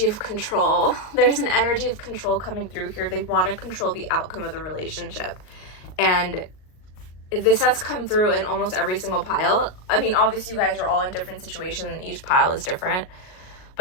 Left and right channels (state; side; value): late; right; 38 ms